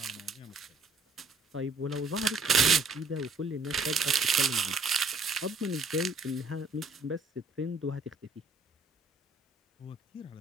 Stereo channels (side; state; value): left; quieter; 3.4 dB